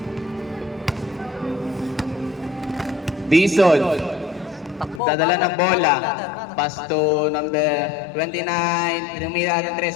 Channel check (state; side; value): drops out; right; at 5.0 s